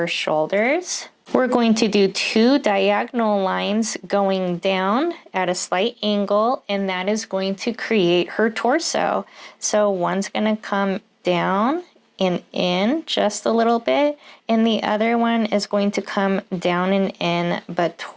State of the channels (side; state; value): both; identical; correlation 1.00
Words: shoulders. We're going to do two diagonal lines going down at a slight angle, and that is going to create her torso. So one's going to come down and in just a little bit, and the other one is going to come down and in, but